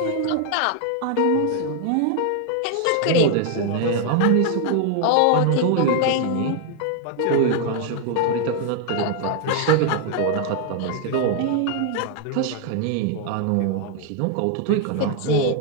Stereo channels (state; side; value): different; both; correlation 0.00